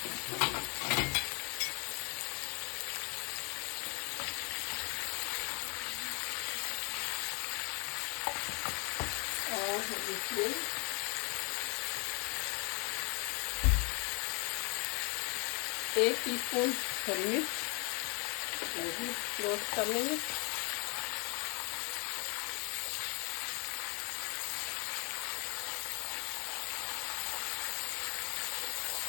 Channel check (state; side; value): quieter; right; 33.9 dB